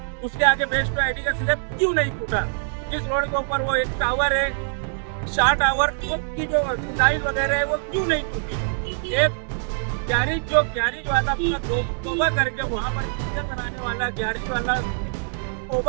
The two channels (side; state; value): left; silent; digital silence